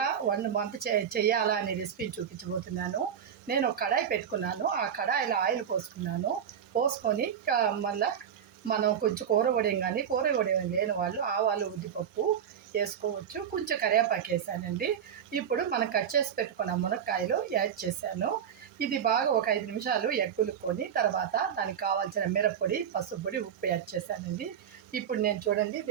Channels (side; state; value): left; quieter; 8.5 dB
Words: వంట చేయాలా అనే రెసిపీని చూపించబోతున్నాను. నేను ఒక కడాయి పెట్టుకున్నాను. ఆ కడాయిలో ఆయిల్ పోసుకొని మళ్ళీ మనం కొంచెం కూర వడియం కానీ కూర వడియం లేని వాళ్ళు ఆవాలు ఉద్దిపప్పు వేసుకోవచ్చు. కొంచెం కరివేపాకు వేసానండి. ఇప్పుడు మనం కట్ చేసి పెట్టుకున్న మునక్కాయలు యాడ్ చేశాను. ఇది బాగా ఒక 5 నిమిషాలు ఎగ్గులుకొని తర్వాత దానికి కావాల్సిన మిరప్పొడి, పసుపు పొడి, ఉప్పు యాడ్ చేశానండి. ఇప్పుడు నేను చూడండి